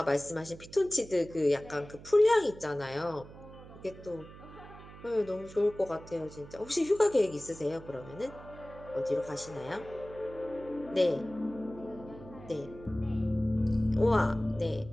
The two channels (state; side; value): noise; right; hum, 17 dB below the sound